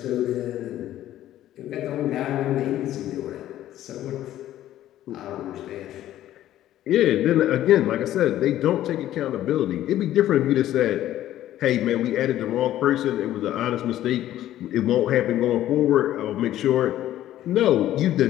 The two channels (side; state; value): right; quieter; 13.1 dB